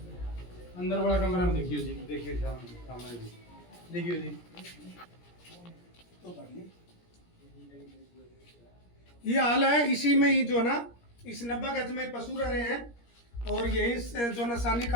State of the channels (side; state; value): right; late; 17 ms